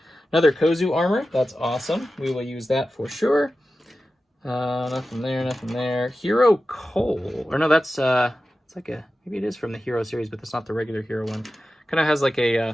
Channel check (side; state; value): both; normal; correlation 0.94